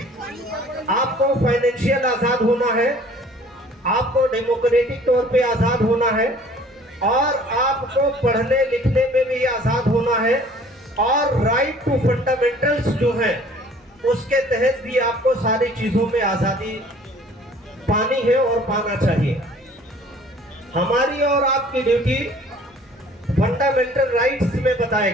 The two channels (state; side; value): normal; both; correlation 0.52